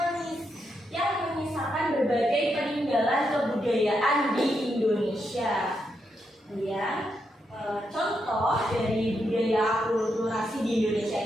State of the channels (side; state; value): both; normal; correlation 0.82